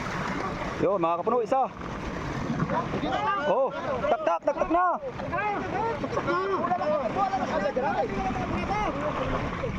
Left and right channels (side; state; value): both; identical; correlation 1.00